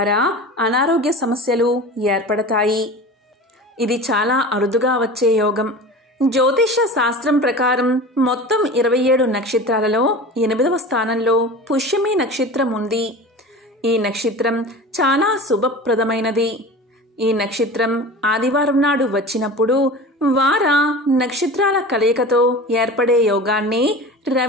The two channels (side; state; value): both; normal; correlation 0.34